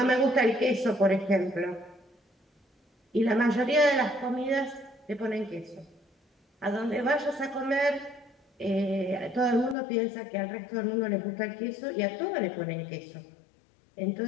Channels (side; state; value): right; drops out; at 9.8 s